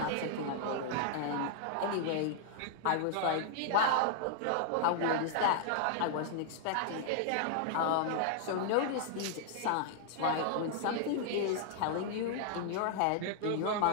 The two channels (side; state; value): both; different; correlation -0.01